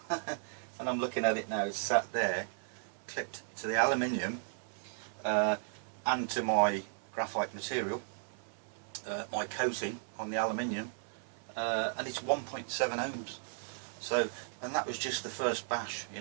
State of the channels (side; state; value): left; silent; 54 dB below the other